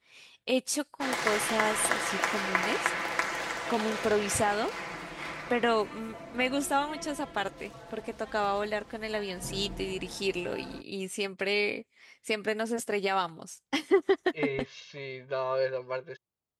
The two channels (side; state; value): both; identical; correlation 1.00